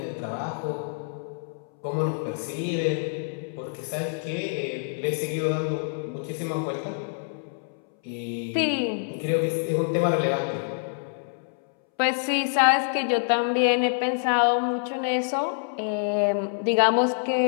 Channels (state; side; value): silent; right; 61 dB below the other